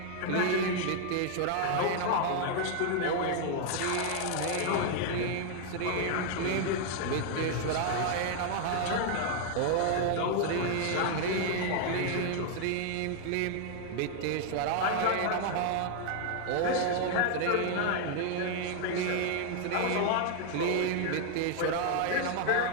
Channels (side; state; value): both; different; correlation 0.00